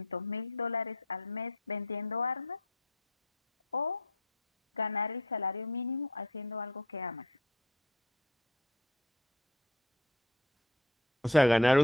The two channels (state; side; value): normal; both; correlation 0.44